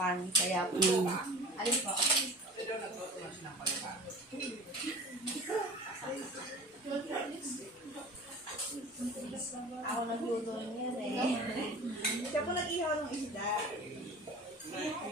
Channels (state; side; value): normal; both; correlation 0.40